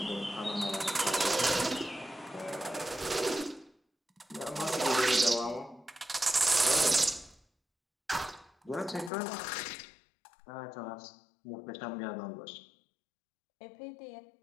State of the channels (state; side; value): drops out; right; at 9.1 s